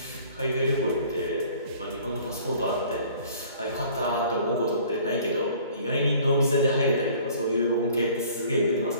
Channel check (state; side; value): inverted; both; correlation -0.52